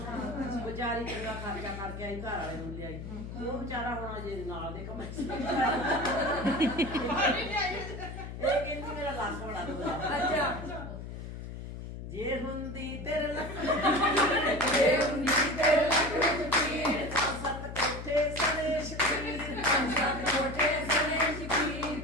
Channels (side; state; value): left; noise; hum, 9 dB below the sound